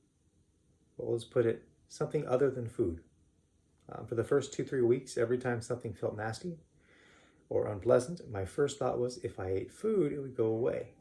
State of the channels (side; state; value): both; identical; correlation 1.00